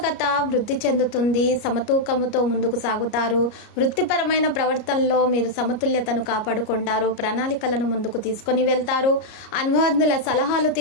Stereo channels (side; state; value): right; late; 33 ms